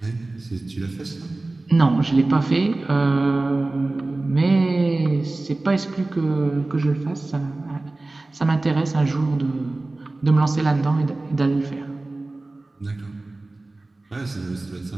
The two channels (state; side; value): quieter; left; 3.0 dB